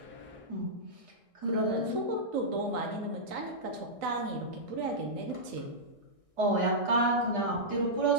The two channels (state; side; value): late; left; 1.6 ms